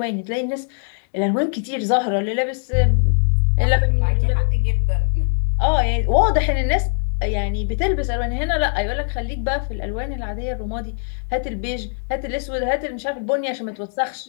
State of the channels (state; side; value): silent; right; 65 dB below the other